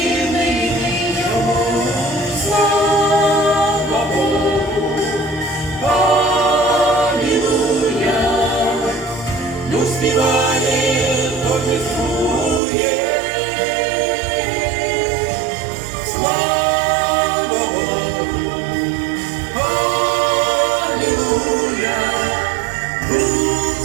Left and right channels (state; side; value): drops out; left; at 12.6 s